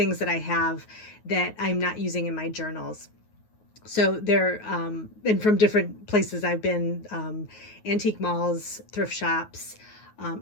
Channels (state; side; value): late; right; 9.4 ms